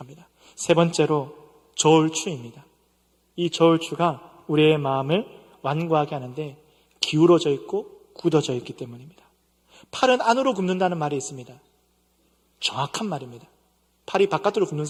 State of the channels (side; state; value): both; identical; correlation 1.00